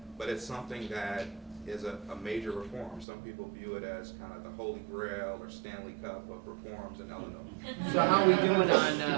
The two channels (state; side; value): drops out; left; at 3.1 s